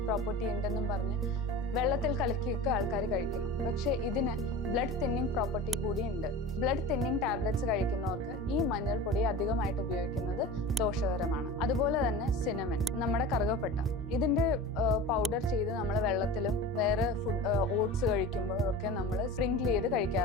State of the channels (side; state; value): both; normal; correlation 0.33